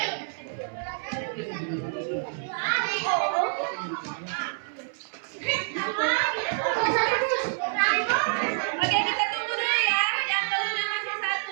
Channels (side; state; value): left; silent; 60 dB below the other